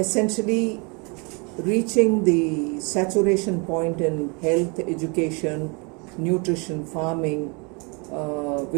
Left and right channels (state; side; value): quieter; left; 32.0 dB